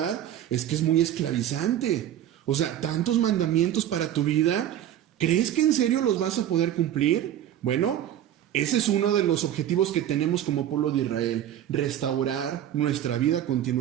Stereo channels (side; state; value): left; quieter; 11.2 dB